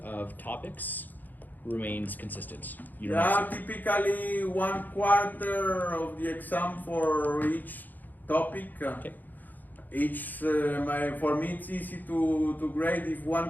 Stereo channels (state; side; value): late; right; 0.085 ms